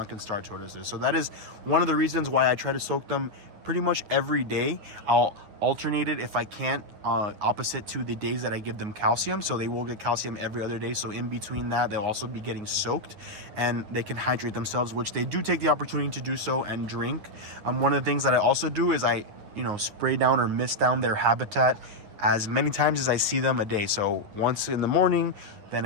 Star Tortoises. So that is one of the reasons why I try to soak them pretty much every day. I'll alternate it if I can't, opposite to the days that I give them calcium. So they will get calcium every other day. So in between that, they'll also be getting soaked, and they can hydrate themselves, which they do take the opportunity to do so and drink. One of the things that I also do is I spray down or mist down their habitat as many times as I see them a day. So once in the morning, then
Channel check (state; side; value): late; left; 9.6 ms